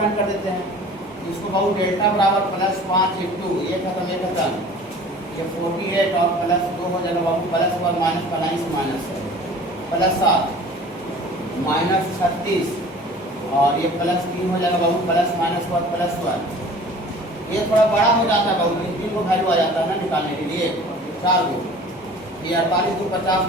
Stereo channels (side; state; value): both; normal; correlation 0.45